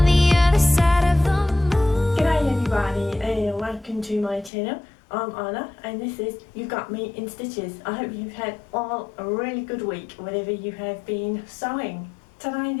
the other side of the moon. G'day everybody and welcome to my channel. I'm Anna and this is You Got Me in Stitches. I hope you've had all a really good week whatever you have been sewing. Today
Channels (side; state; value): right; drops out; at 4.5 s